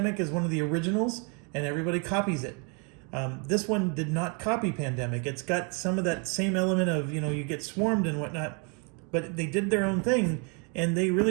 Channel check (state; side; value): quieter; left; 35.3 dB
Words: is one of the originals, and everybody copies it. This one did not copy Pandemic. It's got some of that same element of, you know, you get swarmed and whatnot, but they did their own thing, and they